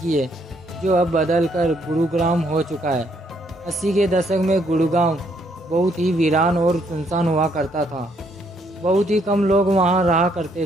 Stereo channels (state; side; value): normal; both; correlation 0.70